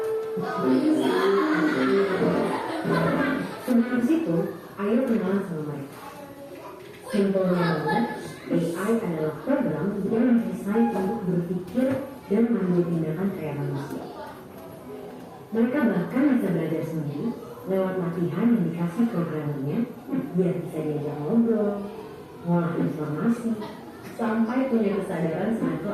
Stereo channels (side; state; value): both; identical; correlation 1.00